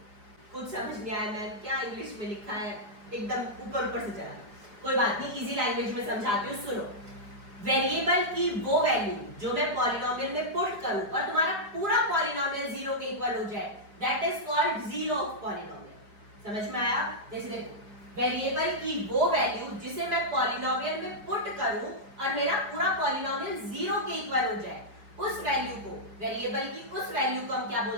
कुछ समझ नहीं आया मैम, क्या इंग्लिश में लिखा है, एकदम ऊपर ऊपर से चला, कोई बात नहीं, इजी लैंग्वेज में समझाती हूँ, सुनो। वेरिएबल की वो वैल्यू जो मैं पॉलिनोमियल में पुट करूं और तुम्हारा पूरा पॉलिनोमियल 0 के इक्वल हो जाए, that is called zero of polynomial. समझ में आया, जैसे देखो वेरिएबल की वो वैल्यू जिसे मैं पॉलिनोमियल में पुट करूं और मेरा पूरा पॉलिनोमियल 0 के इक्वल हो जाए, उस वैल्यू को, वेरिएबल की उस वैल्यू को हम क्या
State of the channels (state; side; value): late; left; 4.9 ms